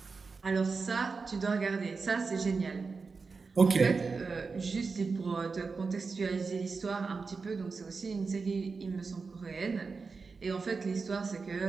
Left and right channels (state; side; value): quieter; left; 4.6 dB